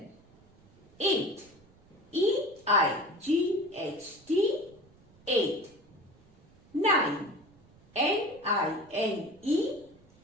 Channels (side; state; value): right; noise; rumble, 29 dB below the sound